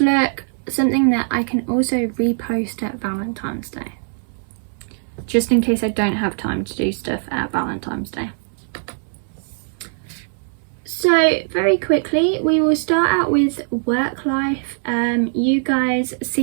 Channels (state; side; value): silent; left; digital silence